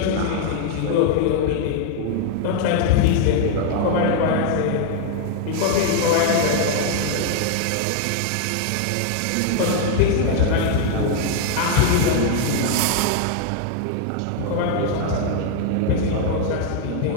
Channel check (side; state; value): both; different; correlation 0.00